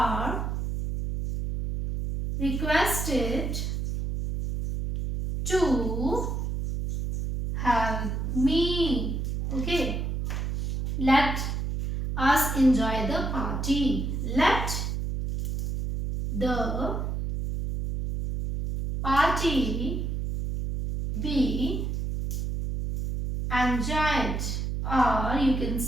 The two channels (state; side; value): noise; right; hum, 2 dB below the sound